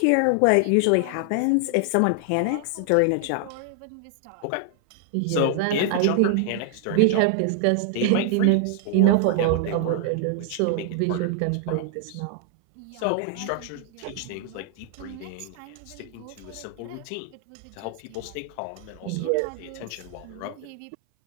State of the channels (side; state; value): both; different; correlation 0.00